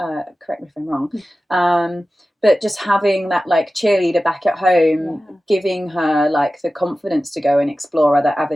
me if I'm wrong. But just having that, like, cheerleader back at home, giving her, like, the confidence to go and explore other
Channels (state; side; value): normal; both; correlation 0.95